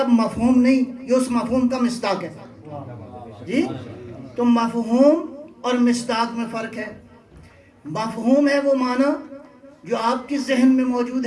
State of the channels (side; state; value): both; identical; correlation 1.00